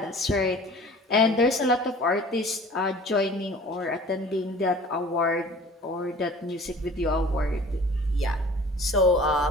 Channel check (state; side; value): normal; both; correlation 0.46